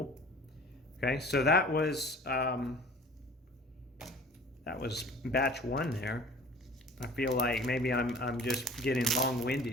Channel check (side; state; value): both; normal; correlation 0.45